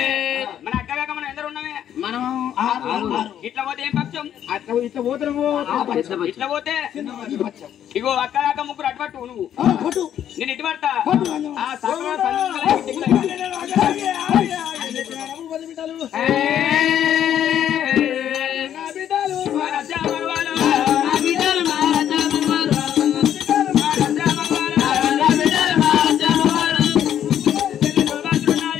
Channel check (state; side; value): quieter; right; 10.2 dB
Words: మన అక్క కాక మనం ఎందరు ఉన్నామే మనం ఇట్లా పోతే ఏం పక్షం అట్లా ఇట్లా పోతున్నాము ఇట్లా పోతే ఇగో అక్క కాక ముగ్గురు అటుపట్టు నువ్వు నేను ఇటు పడతా ఆ